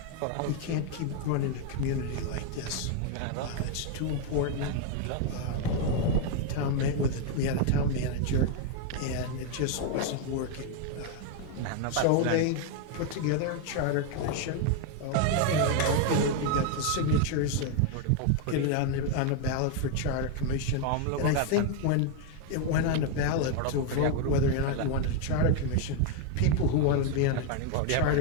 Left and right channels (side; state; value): both; different; correlation 0.01